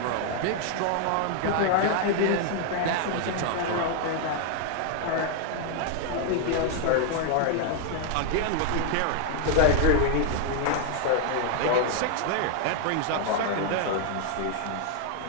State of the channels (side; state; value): both; different; correlation 0.00